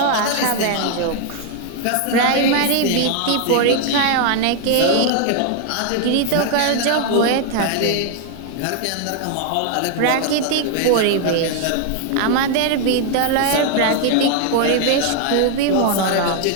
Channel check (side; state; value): both; different; correlation 0.00